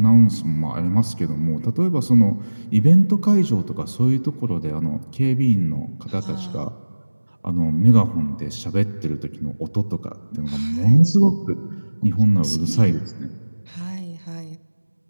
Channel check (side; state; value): both; inverted; correlation -1.00